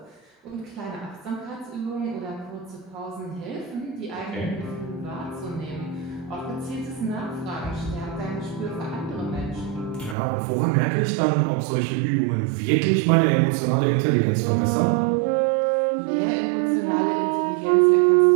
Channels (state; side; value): drops out; left; at 10.2 s